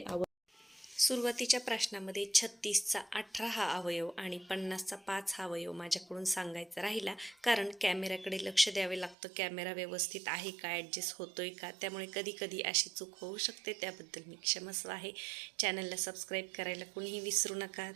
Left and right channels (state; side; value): drops out; left; at 9.2 s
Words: सुरुवातीच्या प्रश्नामध्ये 36चा 18 हा अवयव आणि 50चा 5 हा अवयव माझ्याकडून सांगायचा राहिला, कारण कॅमेऱ्याकडे लक्ष द्यावे लागतं. कॅमेरा व्यवस्थित आहे का, ॲडजस्ट होतोय का, त्यामुळे कधी कधी अशी चूक होऊ शकते. त्याबद्दल मी क्षमस्व आहे. चॅनलला सबस्क्राईब करायला कोणीही विसरू नका.